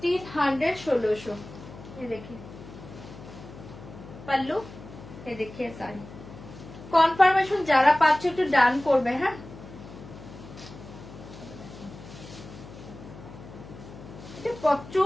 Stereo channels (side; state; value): left; noise; hum, 16 dB below the sound